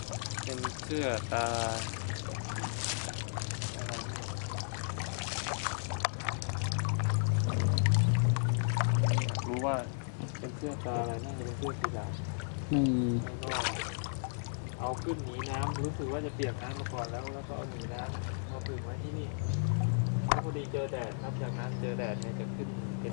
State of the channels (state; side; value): silent; right; 55 dB below the other